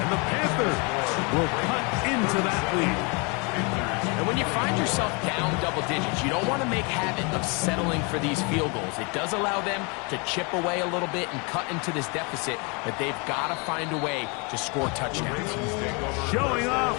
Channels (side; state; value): right; quieter; 31.6 dB